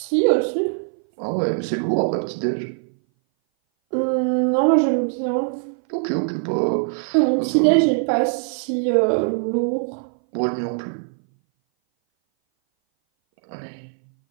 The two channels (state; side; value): silent; left; 59 dB below the other